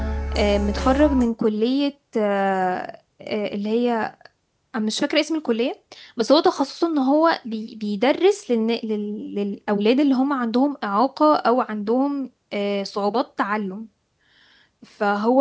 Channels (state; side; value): identical; both; correlation 1.00